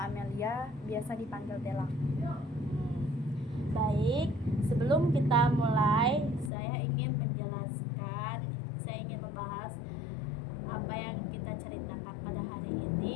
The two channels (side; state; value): right; drops out; at 6.5 s